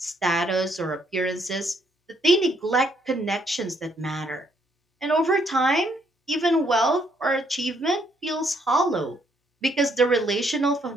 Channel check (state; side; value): normal; both; correlation 0.70